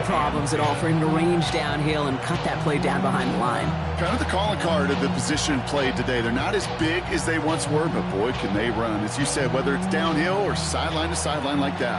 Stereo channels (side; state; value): both; identical; correlation 1.00